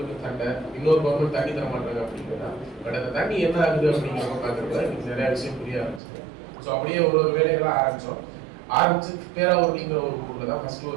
சண்டை, இன்னொரு கவர்மெண்ட் தண்ணி தர மாட்டாங்க அப்படிங்கிறதா. பட் அந்த தண்ணி என்ன ஆகுது அப்படிங்கிறத பார்க்குறப்ப எனக்கு நிறைய விஷயம் புரிய ஆரம்பிச்சு. ஸோ அப்படியே ஒரு வேலைகளாக ஆரம்பிச்சு பேராவூர்ணிங்கிற ஒரு ஊரில் தான் ஃபர்ஸ்ட்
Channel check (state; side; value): drops out; left; at 6.0 s